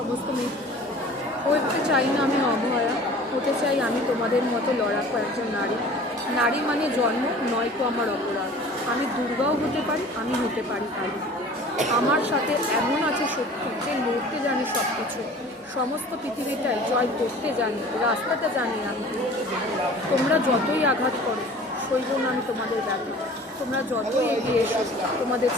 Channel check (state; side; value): normal; both; correlation 0.45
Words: মেয়ে হতে চাই না আমি অভয়া, হতে চাই আমি তোমাদের মতো লড়াকু একজন নারী। নারী মানে জন্ম নয় তো আমার অপরাধ। আমি দুর্গাও হতে পারি, আমি হতে পারি কালী। আমার সাথে এমন আছে শক্তি যে লড়তে জানি সব কিছু, সমস্ত পৃথিবীটাই জয় করতে জানি, রাস্তাটা জানি আমি। তোমরা যতই আঘাত করো সইব না আমি তোমাদের ব্যাপারে। তোমরা যতই এগিয়ে এসো, তোমাদের